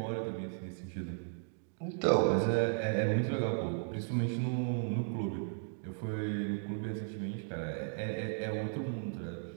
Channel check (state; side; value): silent; left; digital silence